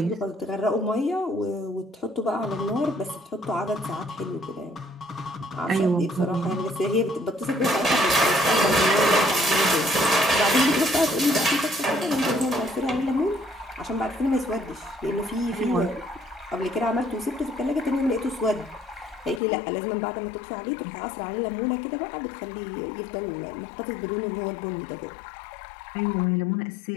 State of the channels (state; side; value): drops out; right; at 19.4 s